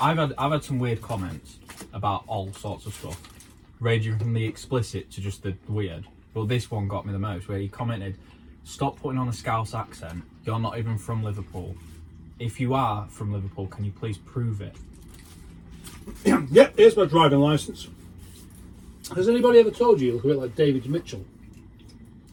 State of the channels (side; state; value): both; identical; correlation 1.00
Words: I've had some weird comments about all sorts of stuff, ranging from the explicit to just the weird. But this one got me the most, where he commented, "Stop putting on a Scouse accent. You're not even from Liverpool. If you are from Liverpool, can you please prove it?" Yep, here's my driving licence. Has anybody ever told you look a bit like David Mitchell?